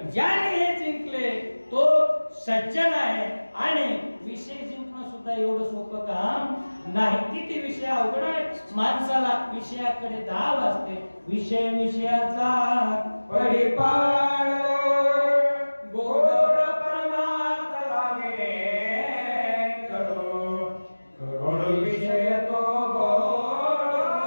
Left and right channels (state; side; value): inverted; both; correlation -1.00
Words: ज्याने हे जिंकले तो सज्जन आहे। आणि विषय जिंकणं सुद्धा एवढं सोपं काम नाही। किती विषय अवघड आहे, माणसाला विषयाकडे धाव असते। विषय विषयाचा परिपाळ गोड परमार्थ लागे करो करोड विषय तो